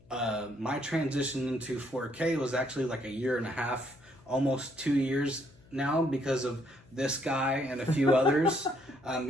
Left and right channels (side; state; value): left; noise; hum, 27 dB below the sound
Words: my transition into 4K was actually like a year and a half, almost 2 years now, because of this guy and a few others.